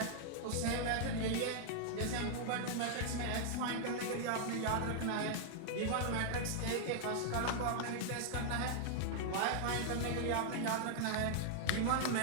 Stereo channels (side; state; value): both; different; correlation -0.01